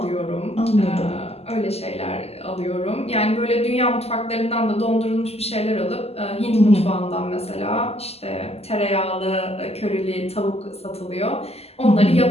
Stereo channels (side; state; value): right; late; 0.29 ms